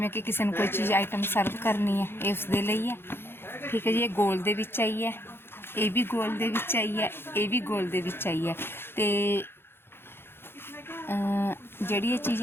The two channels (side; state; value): right; late; 0.11 ms